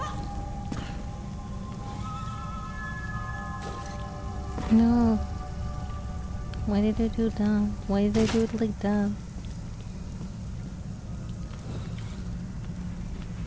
No. Why did I do that? Why did I do it like that?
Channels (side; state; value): both; identical; correlation 1.00